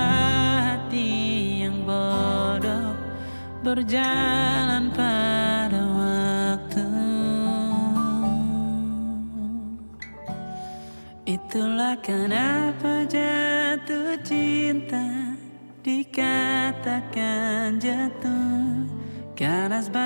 hati yang bodoh berjalan pada waktu. Itulah kenapa jatuh cinta dikatakan jatuh. Karena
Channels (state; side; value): inverted; both; correlation -1.00